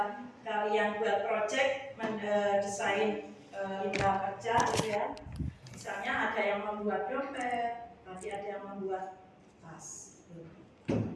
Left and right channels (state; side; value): identical; both; correlation 1.00